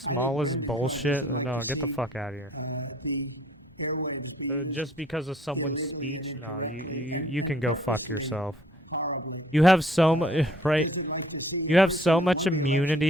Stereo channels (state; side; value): normal; both; correlation 0.59